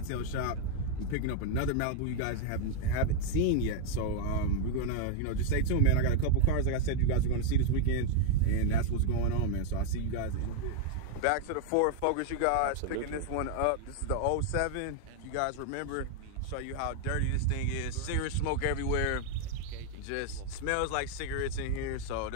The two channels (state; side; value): different; both; correlation 0.00